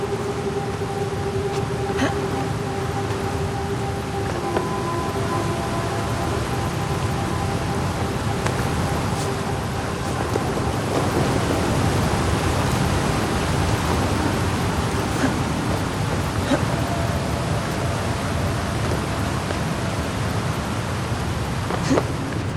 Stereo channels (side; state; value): both; identical; correlation 1.00